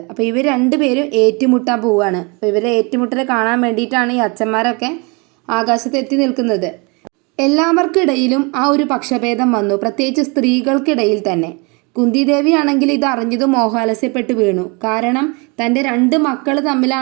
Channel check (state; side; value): quieter; left; 30.2 dB